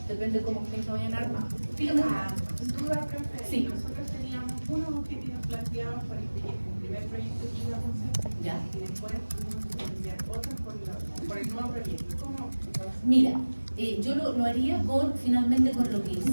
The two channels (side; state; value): both; inverted; correlation -1.00